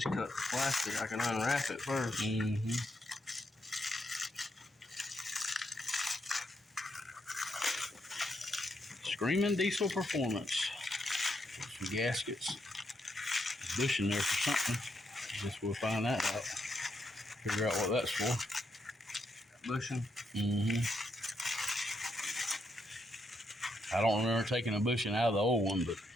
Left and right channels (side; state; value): both; normal; correlation 0.79